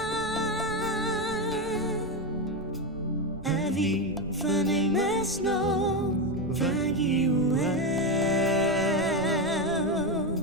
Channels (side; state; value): right; noise; rumble, 16 dB below the sound